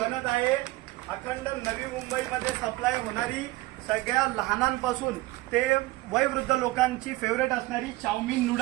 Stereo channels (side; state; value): left; quieter; 19.9 dB